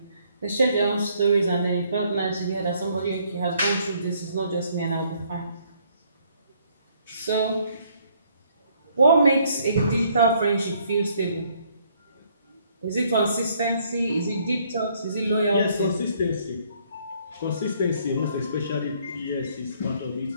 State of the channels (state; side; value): inverted; both; correlation -0.66